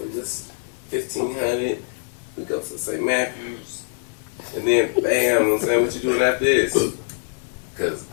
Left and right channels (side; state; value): right; silent; digital silence